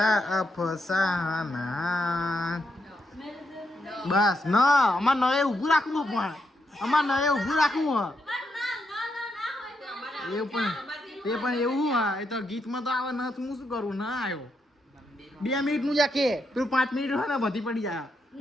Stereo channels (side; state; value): both; normal; correlation 0.81